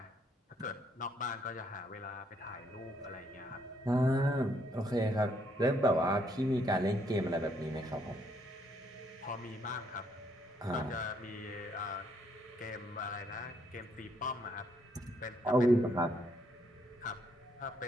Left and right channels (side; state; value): both; normal; correlation 0.71